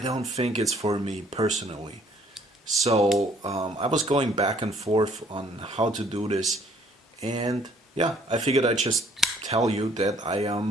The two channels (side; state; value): both; normal; correlation 0.61